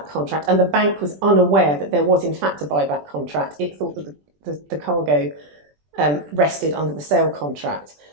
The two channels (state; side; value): late; left; 20 ms